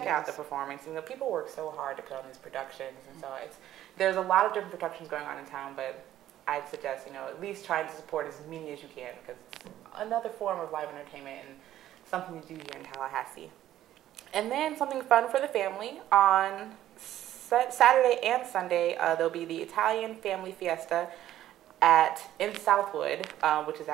out the performance. People work so hard to put on these productions, and so there's a lot of different productions going on in town, but I'd suggest, at least trying to support as many as you can because it's another form of live entertainment and something to do here in Tallahassee. And then something fun for the family. On Saturday and Sunday, there'll be the Italian Family Fiesta in Southwood, which is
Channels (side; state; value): left; quieter; 12.8 dB